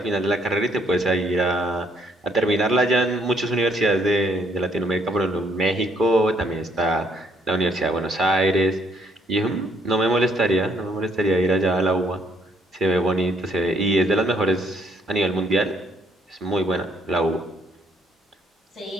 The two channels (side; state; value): both; normal; correlation 0.68